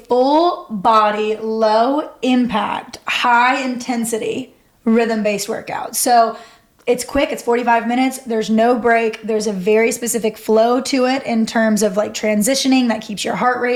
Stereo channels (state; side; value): identical; both; correlation 1.00